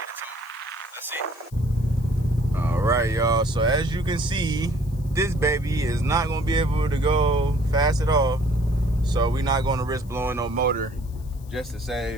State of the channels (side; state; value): left; noise; hiss, 26 dB below the sound